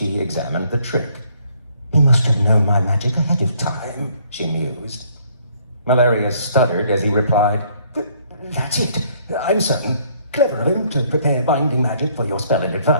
examined the trick. He must have known my magic ahead of time, she mused. Malarius stuttered as he replied, That's it. I'm certain. Clever of him to prepare binding magic for your spell in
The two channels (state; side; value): inverted; both; correlation -0.65